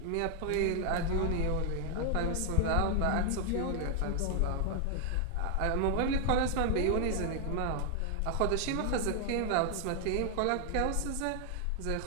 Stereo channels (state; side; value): different; both; correlation 0.00